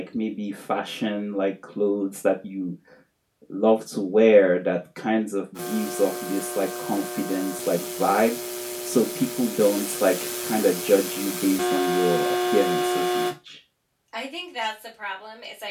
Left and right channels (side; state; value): both; identical; correlation 1.00